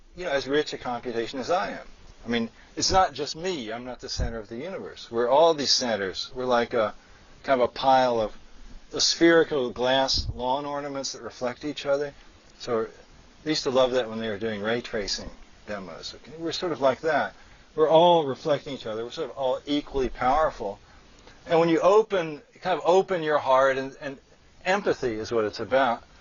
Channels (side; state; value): both; identical; correlation 1.00